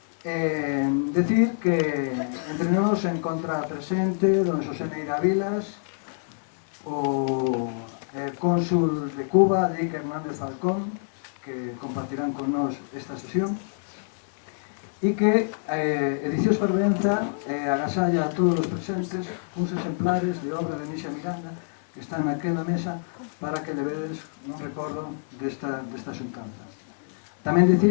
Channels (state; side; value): silent; right; digital silence